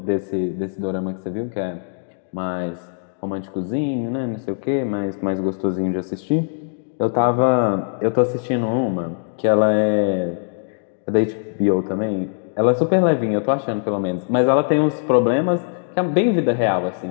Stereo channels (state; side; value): silent; right; digital silence